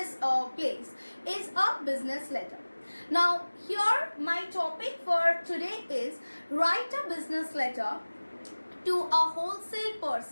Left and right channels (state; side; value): inverted; both; correlation -1.00